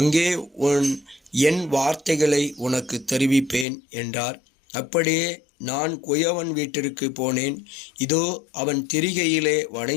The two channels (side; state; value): right; drops out; at 3.7 s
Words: என் வார்த்தைகளை உனக்கு தெரிவிப்பேன் என்றார். அப்படியே நான் குயவன் வீட்டிற்கு போனேன். இதோ அவன் திரிகையிலே